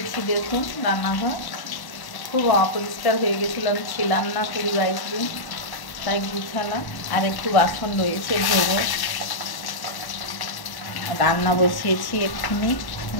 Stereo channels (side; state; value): right; late; 1.1 ms